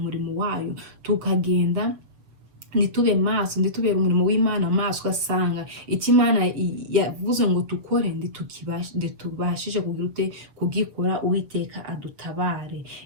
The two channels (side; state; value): left; late; 7.4 ms